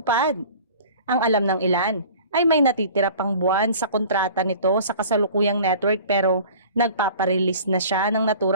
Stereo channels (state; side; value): inverted; both; correlation -0.44